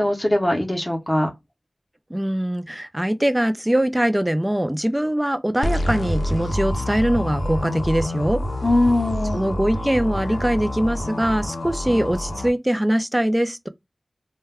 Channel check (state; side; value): normal; both; correlation 0.98